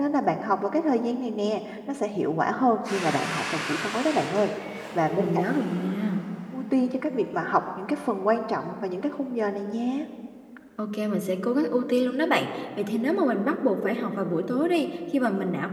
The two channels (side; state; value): both; identical; correlation 1.00